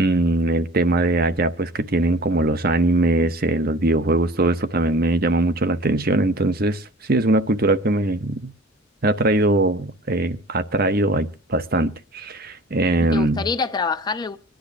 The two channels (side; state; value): both; normal; correlation 0.44